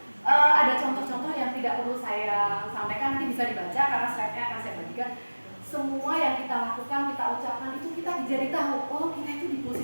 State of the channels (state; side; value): inverted; both; correlation -1.00